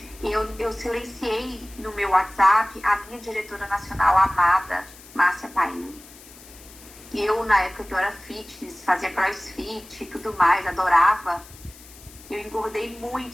Eu silenciei no meu WhatsApp a minha diretora nacional amada, Márcia Paim. Eu, na época que eu era fitness, fazia crossfit e tudo mais, adorava. Eu engordei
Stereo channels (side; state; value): left; noise; hiss, 20 dB below the sound